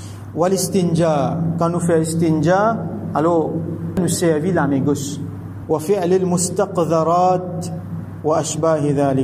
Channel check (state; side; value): identical; both; correlation 1.00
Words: Wal istinja, quand nous faisons istinja, alors, nous servons la main gauche. وفعل المستقذرات وأشباه